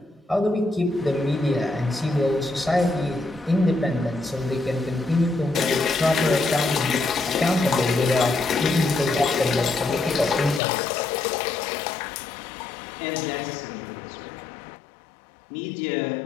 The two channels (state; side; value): drops out; right; at 10.6 s